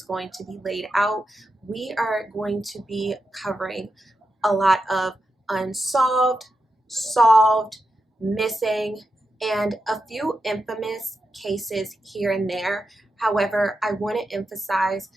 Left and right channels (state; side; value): normal; both; correlation 0.88